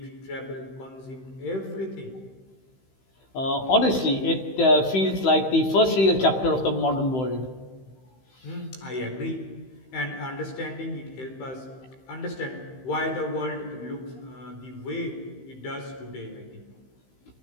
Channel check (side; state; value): right; late; 15 ms